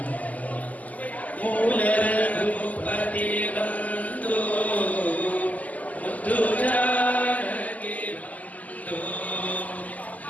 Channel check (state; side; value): late; right; 0.077 ms